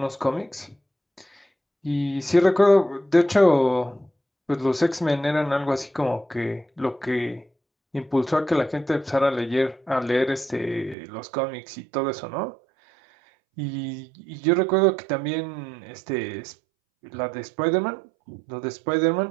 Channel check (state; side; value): drops out; left; at 11.0 s